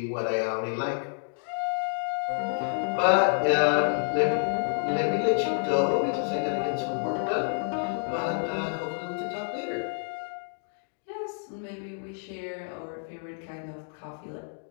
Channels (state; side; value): silent; right; digital silence